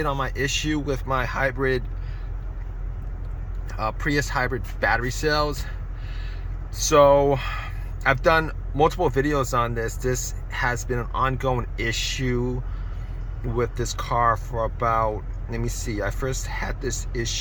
on my issue with my hybrid Prius hybrid battery cells. So I've done multiple videos on this. This has been an ongoing issue with this car for about, let me see, I first had this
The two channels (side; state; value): both; identical; correlation 1.00